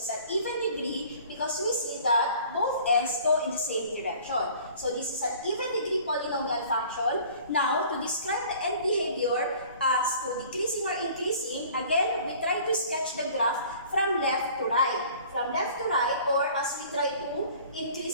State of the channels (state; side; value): inverted; both; correlation -0.49